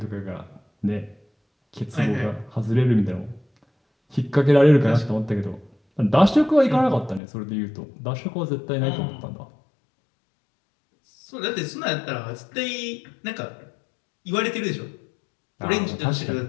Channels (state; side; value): drops out; right; at 7.2 s